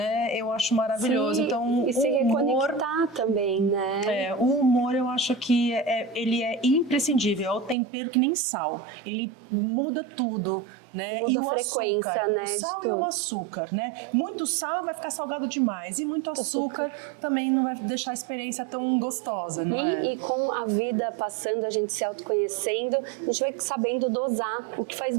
eu acho maravilhoso. Sim, então, e se reconectar também, né? O humor eu acho que ele é imprescindível, é o tempero que nem sal, ele muda tudo. Né? E o açúcar, né? O sal e o açúcar, né? Muito sal vai ficar salgado demais e muito açúcar também não vai deixar a experiência tão gostosa, não é? E com a vida passando, a gente se autoconhecendo, a gente vai sabendo dosar o que faz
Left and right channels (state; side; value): drops out; left; at 7.8 s